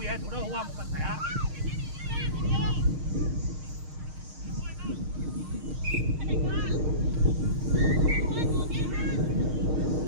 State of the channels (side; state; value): left; late; 6.5 ms